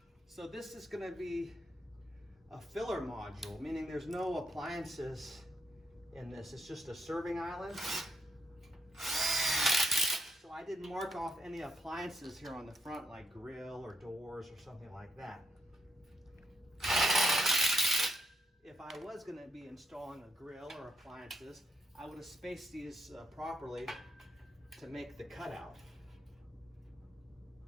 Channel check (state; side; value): normal; both; correlation 0.77